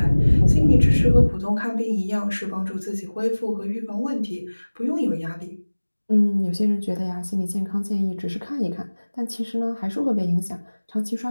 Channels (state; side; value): inverted; both; correlation -1.00